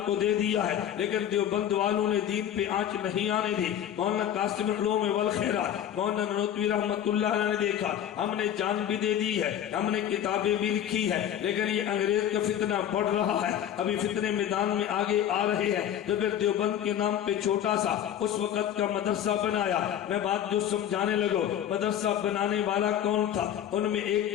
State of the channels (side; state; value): right; quieter; 10.3 dB